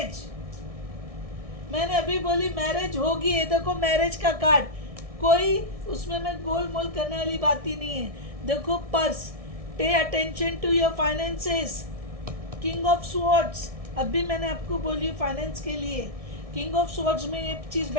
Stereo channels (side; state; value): left; late; 1.6 ms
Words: मैंने अभी बोली मैरिज होगी। ये देखो मैरिज का कार्ड, कोई उसमें मैं गोल मोल करने वाली बात ही नहीं है। देखो purse, pay attention to your finances, king of swords, अभी मैंने आपको बोली फाइनेंस के लिए किंग ऑफ स्वॉर्ड्स में ये चीज़